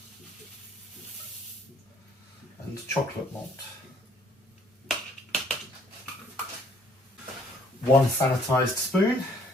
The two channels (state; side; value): normal; both; correlation 0.61